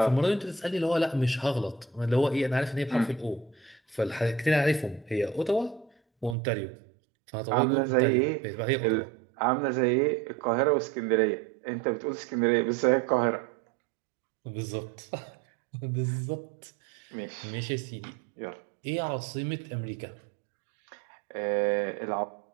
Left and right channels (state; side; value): drops out; left; at 6.4 s